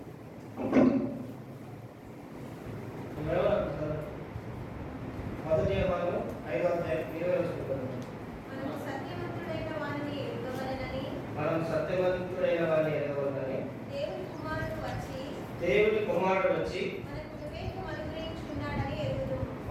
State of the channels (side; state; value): both; identical; correlation 1.00